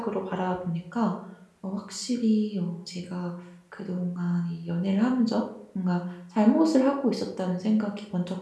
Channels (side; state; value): both; identical; correlation 1.00